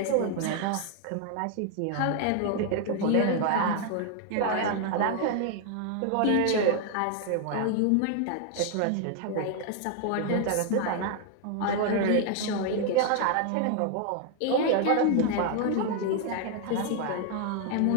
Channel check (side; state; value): both; different; correlation 0.00